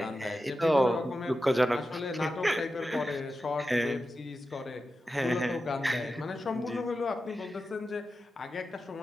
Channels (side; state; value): both; normal; correlation 0.91